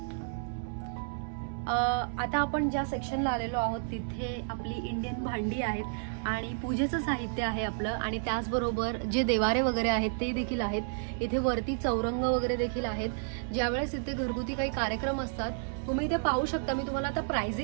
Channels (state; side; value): silent; left; digital silence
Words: आता आपण ज्या सेक्शनला आलेलो आहोत तिथे आपली इंडियन भांडी आहेत आणि पूजेचं साहित्य आहे आपलं, आणि त्याचबरोबर जे देवारे वगैरे आहेत ते देखील आहेत. इथे वरती चौरंग वगैरे देखील आहेत. ज्यावेळेस इथे घरगुती काही कार्यक्रम असतात तुम्ही इथे पाहू शकता. मी तुम्हाला आता